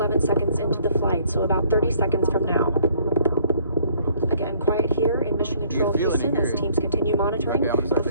seconds into the flight, so about 30 seconds from now. Again, quiet here in Mission Control Houston as teams continue monitoring the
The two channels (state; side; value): inverted; both; correlation -0.59